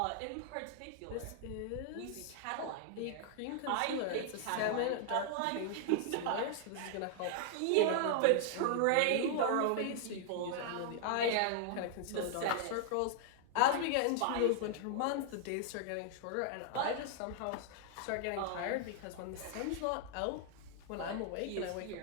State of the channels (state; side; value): different; both; correlation 0.00